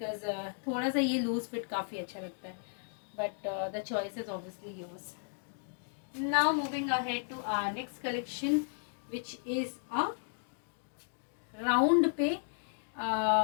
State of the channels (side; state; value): right; silent; digital silence